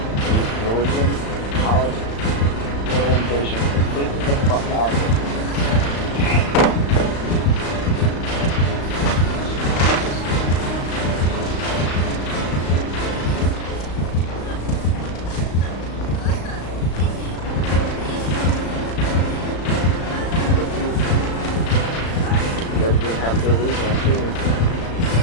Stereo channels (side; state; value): right; late; 35 ms